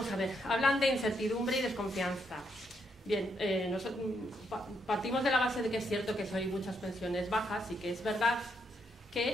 a ver, hablan de incertidumbre y desconfianza. Bien, partimos de la base de que es cierto que hay muchas pensiones bajas y que es verdad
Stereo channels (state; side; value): normal; both; correlation 0.77